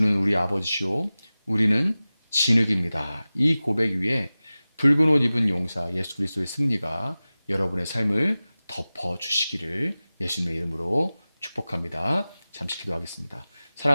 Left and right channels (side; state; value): both; inverted; correlation -0.97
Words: 우리 아버지시오, 우리는 진흙입니다. 이 고백 위에 붉은 옷 입은 용사 예수 그리스도의 승리가 여러분의 삶을 덮어 주시기를 예수님의 이름으로 축복합니다. 잠시 기도하겠습니다.